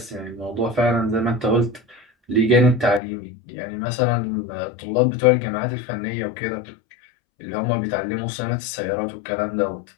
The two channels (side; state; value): right; drops out; at 3.0 s